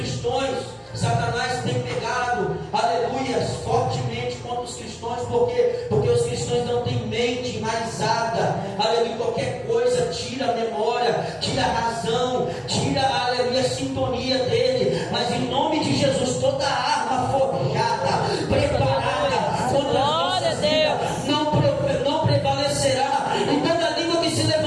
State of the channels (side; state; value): both; identical; correlation 1.00